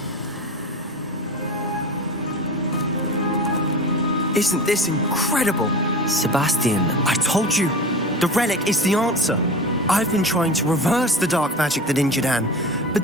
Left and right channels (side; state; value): both; normal; correlation 0.32